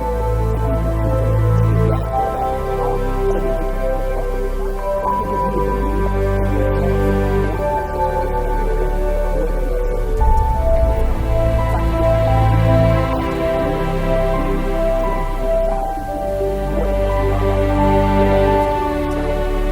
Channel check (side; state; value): both; identical; correlation 1.00